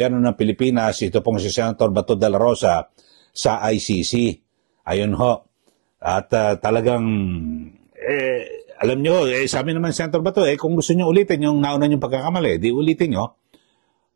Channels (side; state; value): left; silent; digital silence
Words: ng Pilipinas, ito pong si Senator Bato de la Rosa sa ICC. Ayun ho. At talagang, alam nyo, sabi naman Senator Bato, kung gusto nyo ulitin yung nauna nyong pagkakamali, di ulitin nyo.